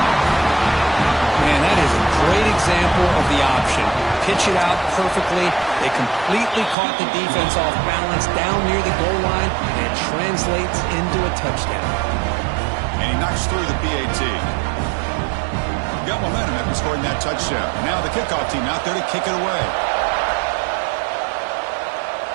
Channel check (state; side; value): drops out; left; at 6.8 s